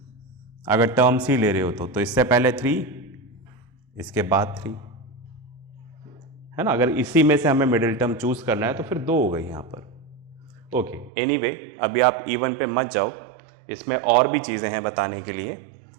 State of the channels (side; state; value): left; drops out; at 11.1 s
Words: अगर टर्म्स ही ले रहे हो तो इससे पहले 3, इसके बाद 3, है ना। अगर इसी में से हमें मिडिल टर्म चूज करना है तो फिर 2 हो गई यहां पर। ओके, एनीवे, अभी आप इवन पे मत जाओ, इसमें और भी चीजें हैं बताने के लिए।